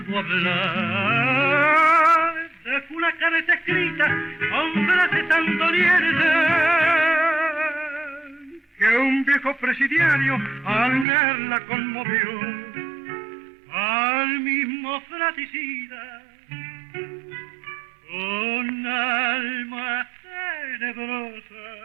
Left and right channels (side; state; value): left; drops out; at 11.1 s